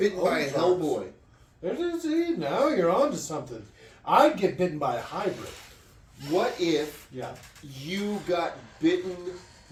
bitten by a Ozarks. Hellboy. See, now you're on to something. I'd get bitten by a hybrid. What if Yeah. you got bitten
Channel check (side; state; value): both; identical; correlation 1.00